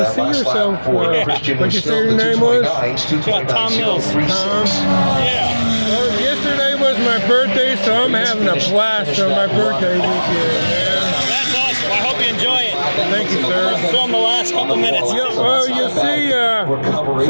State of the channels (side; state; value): both; inverted; correlation -1.00